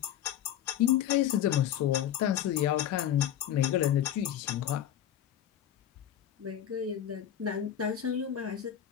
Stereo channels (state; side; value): quieter; right; 10.5 dB